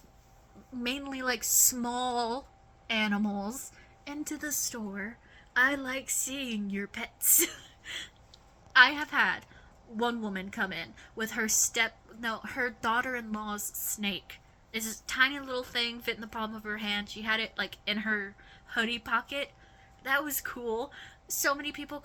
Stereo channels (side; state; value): both; identical; correlation 1.00